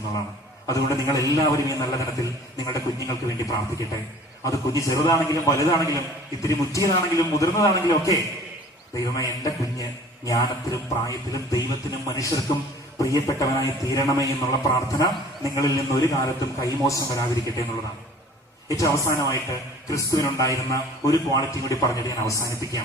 അതുകൊണ്ട് നിങ്ങൾ എല്ലാവരും ഈ നല്ല ദിനത്തിൽ നിങ്ങളുടെ കുഞ്ഞുങ്ങൾക്ക് വേണ്ടി പ്രാർത്ഥിക്കട്ടെ. അത് കുഞ്ഞ് ചെറുതാണെങ്കിലും വലുതാണെങ്കിലും ഇത്തിരി മുറ്റിയതാണെങ്കിലും മുതിർന്നതാണെങ്കിലും ഒക്കെ, ദൈവമേ, എന്റെ കുഞ്ഞ് ജ്ഞാനത്തിലും പ്രായത്തിലും ദൈവത്തിനും മനുഷ്യർക്കും പ്രിയപ്പെട്ടവനായി തീരണമേ എന്നുള്ള പ്രാർത്ഥന നിങ്ങളിൽ നിന്ന് ഒരു കാലത്തും കൈമോശം വരാതിരിക്കട്ടെ എന്നുള്ളതാണ്. ഏറ്റവും അവസാനമായിട്ട് ക്രിസ്തുവിനുണ്ടായിരുന്ന ഒരു ക്വാളിറ്റി കൂടി പറഞ്ഞിട്ട് ഞാൻ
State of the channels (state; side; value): normal; both; correlation 0.48